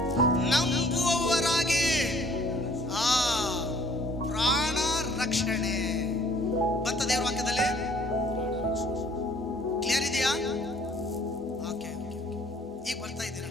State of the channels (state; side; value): normal; both; correlation 0.57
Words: ನಂಬುವವರಾಗಿ ಪ್ರಾಣ ರಕ್ಷಣೆ ಬಂತ ದೇವರ ವಾಕ್ಯದಲ್ಲಿ. ಕ್ಲಿಯರ್ ಇದೆಯಾ? ಓಕೆ, ಈಗ ಬರ್ತಾ ಇದ್ದೀರಾ?